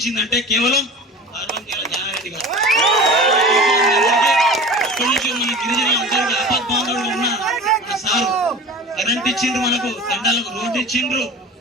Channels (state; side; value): normal; both; correlation 0.36